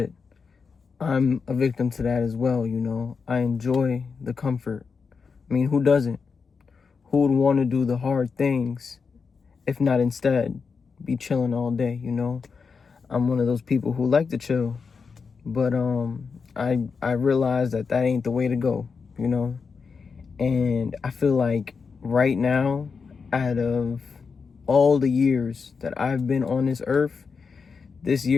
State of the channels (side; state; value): right; quieter; 5.3 dB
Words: I'm a victim to that as well, you know. I enjoy the comfort. I mean, who doesn't? Who would want to do the hard things if not instead be chilling all day, you know? I'm one of those people who like to chill, but I realize that ain't the way to go, you know? And I feel like right now, out of all the years that I've been on this earth, this